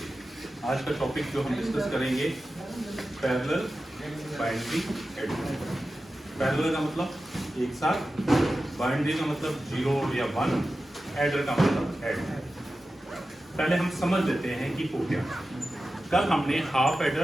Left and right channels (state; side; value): normal; both; correlation 0.93